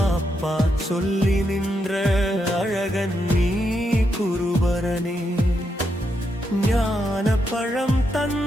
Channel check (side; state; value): both; normal; correlation 0.82